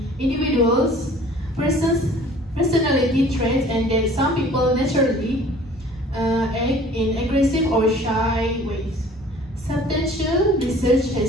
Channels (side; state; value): both; normal; correlation 0.50